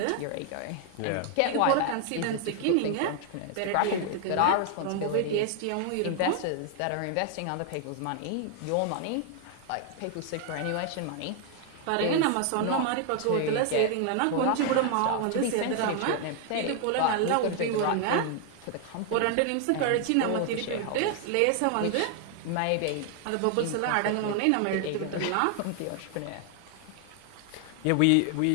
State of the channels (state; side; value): different; both; correlation 0.00